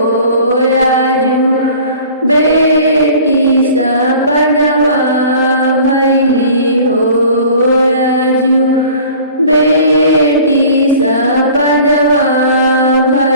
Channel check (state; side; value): inverted; both; correlation -0.46